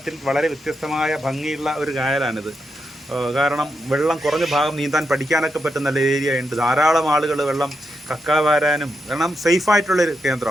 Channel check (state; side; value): normal; both; correlation 0.84